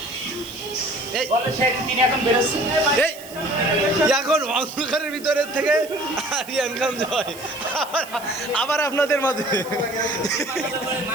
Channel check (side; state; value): right; noise; hiss, 17 dB below the sound